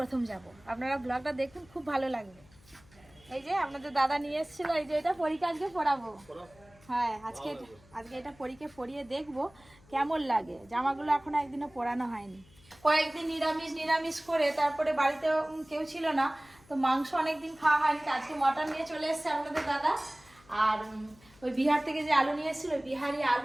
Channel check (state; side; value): noise; left; hum, 27 dB below the sound